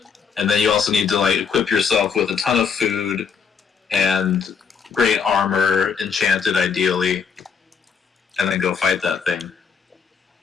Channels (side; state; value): right; quieter; 6.3 dB